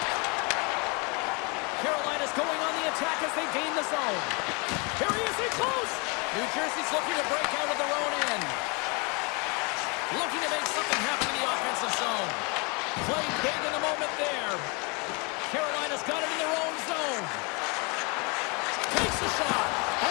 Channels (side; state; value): right; quieter; 31.3 dB